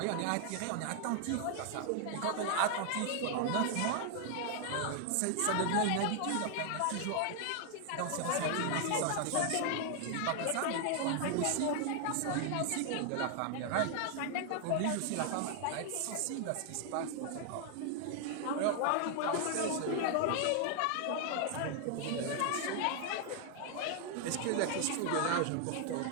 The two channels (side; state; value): both; different; correlation 0.00